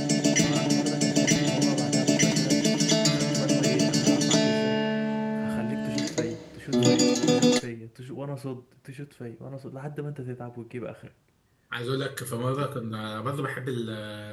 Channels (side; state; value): both; identical; correlation 1.00